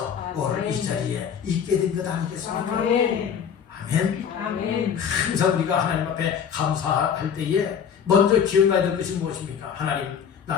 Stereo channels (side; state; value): right; quieter; 7.6 dB